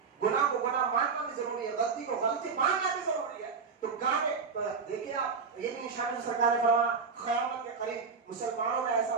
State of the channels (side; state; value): left; quieter; 5.3 dB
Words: گناہ کو گناہ ماننا بھی ضروری ہے, غلطی کو غلطی ماننا بھی ضروری ہے. تو گانے تو دیکھیے آپ, یہ بھی نشانی سرکار نے فرمایا قیامت کے قریب مسلمانوں میں ایسا